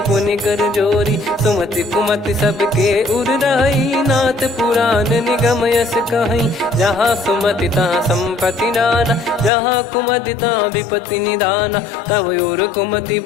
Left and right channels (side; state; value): right; drops out; at 9.5 s